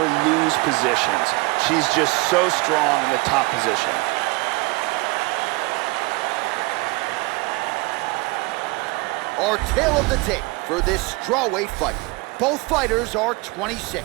lose positions. She's just so strong in the top position. Our tale of the tape for this strawweight fight. Both fighters are 26,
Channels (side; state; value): left; quieter; 25.3 dB